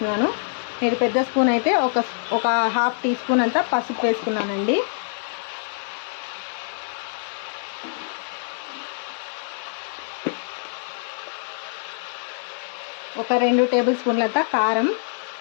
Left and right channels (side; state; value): right; silent; 58 dB below the other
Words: మీరు పెద్ద స్పూన్ అయితే ఒక 1/2 టీ స్పూన్ అంతా పసుపు వేసుకున్నానండి. ఒక 2 టేబుల్ స్పూన్లంతా కారం.